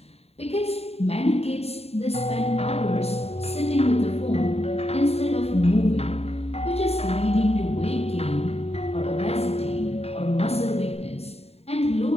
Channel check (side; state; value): right; late; 0.30 ms